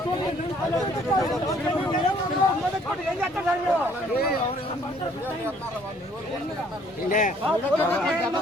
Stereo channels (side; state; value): both; normal; correlation 0.61